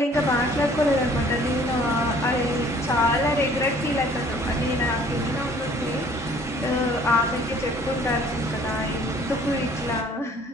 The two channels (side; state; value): both; normal; correlation 0.55